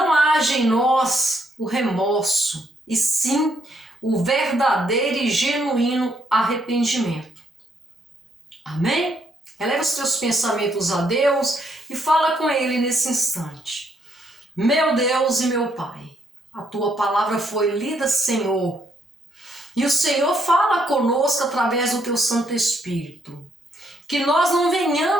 haja em nós o remorso, e sim o verdadeiro e genuíno arrependimento. Amém? Eleva os teus pensamentos a Deus e fala com Ele nesse instante. Meu Deus e meu Pai, a Tua palavra foi lida, Senhor, e o Senhor fala conosco através do Teu Santo Espírito. Que nós não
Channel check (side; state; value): both; normal; correlation 0.73